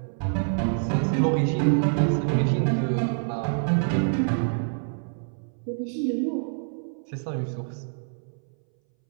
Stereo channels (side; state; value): left; silent; 61 dB below the other